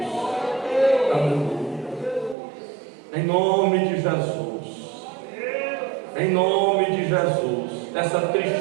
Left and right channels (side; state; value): left; drops out; at 2.4 s